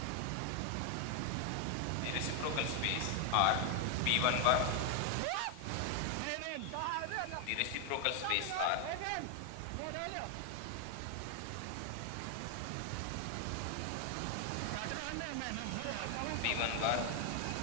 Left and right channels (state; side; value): different; both; correlation 0.01